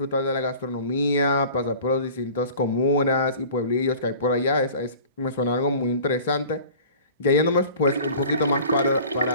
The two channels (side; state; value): both; inverted; correlation -0.44